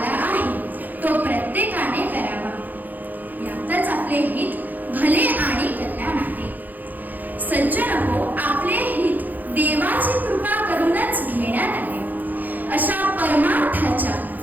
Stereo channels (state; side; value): late; left; 0.084 ms